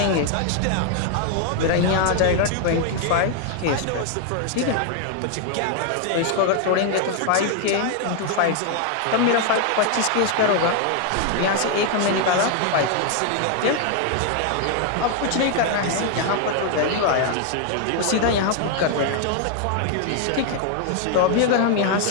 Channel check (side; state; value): both; different; correlation 0.00